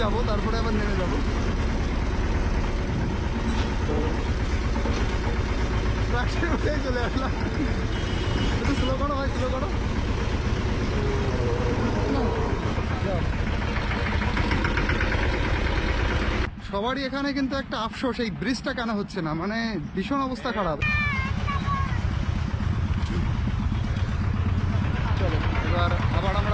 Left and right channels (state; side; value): identical; both; correlation 1.00